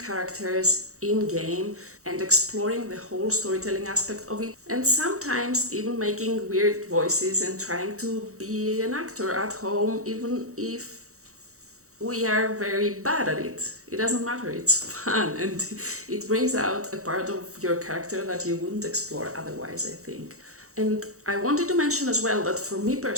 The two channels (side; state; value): left; late; 0.64 ms